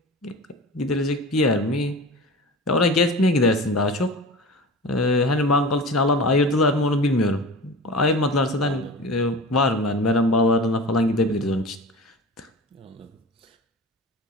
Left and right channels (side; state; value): both; normal; correlation 0.34